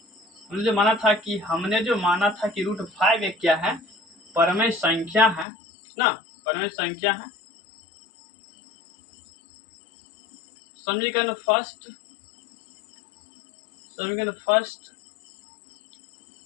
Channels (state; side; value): drops out; right; at 5.5 s